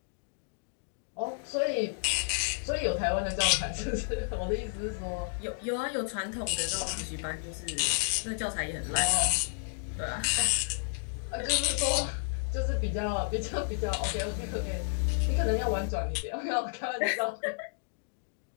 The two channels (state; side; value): silent; right; digital silence